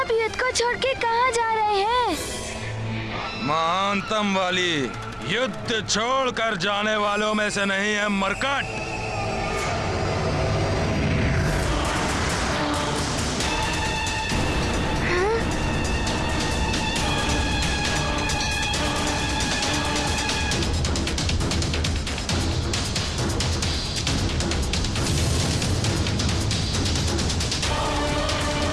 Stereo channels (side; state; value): both; identical; correlation 1.00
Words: युद्ध को छोड़ के कहाँ जा रहे हैं? महानतम वाली युद्ध छोड़कर जाने वालों में से नहीं है मरकट।